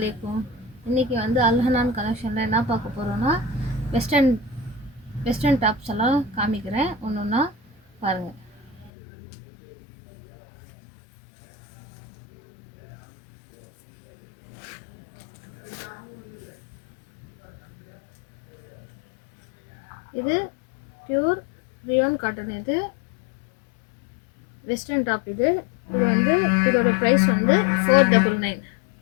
இன்றைக்கி வந்து அல்ஹனான் கலெக்ஷனில் என்ன பார்க்க போகிறோன்னா வெஸ்டர்ன் டாப்ஸ் எல்லாம் காமிக்கிறேன். ஒன்று ஒன்றா பாருங்கள். இது பியூர் ரியோன் காட்டன். இது வெஸ்டர்ன் டாப். இது வந்து இதோட ப்ரைஸ் வந்து 499.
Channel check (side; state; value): right; drops out; at 8.9 s